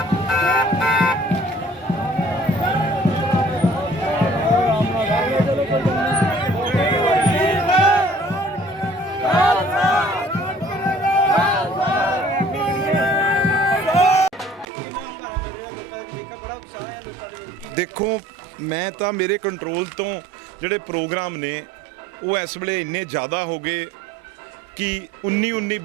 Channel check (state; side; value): normal; both; correlation 0.54